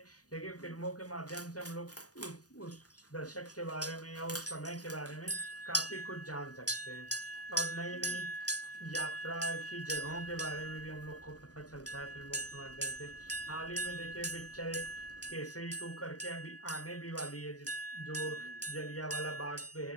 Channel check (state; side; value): late; right; 0.68 ms